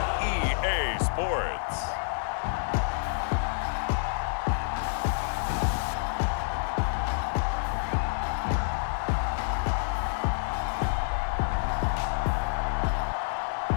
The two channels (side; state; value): right; silent; digital silence